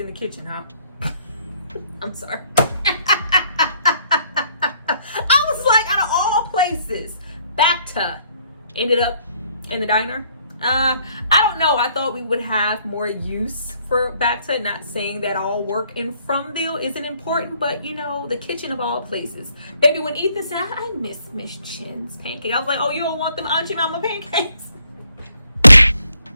the kitchen, huh? I'm sorry. Places, Bacta ended up in the diner. I don't know. I thought we would have more use for Bacta. Not saying that all work in Fromville isn't important, but you know, the kitchen of all places. Baby, when Ethan said, I miss Miss Chen's pancake, I was like, oh, you don't want them Auntie Mama pancakes?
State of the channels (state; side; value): inverted; both; correlation -0.67